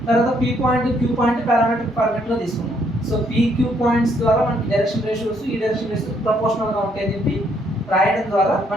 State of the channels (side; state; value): both; normal; correlation 0.70